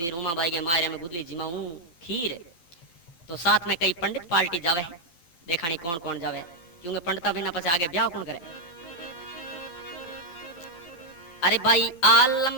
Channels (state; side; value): late; right; 12 ms